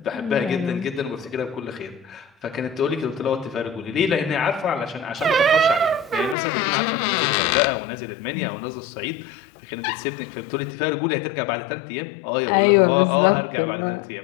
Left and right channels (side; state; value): right; drops out; at 6.4 s